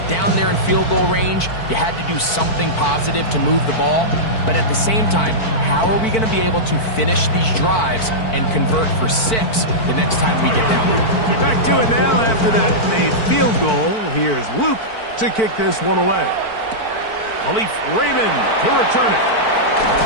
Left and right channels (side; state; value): right; late; 4.5 ms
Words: down there in field goal range, you had to do something positive to move the ball. But at the same time, how are we going to be able to finish these drives and convert for 6 the next time we get down there? Back to it now after that made field goal. Here's Luke to kick this one away. Khalif Raymond to return it.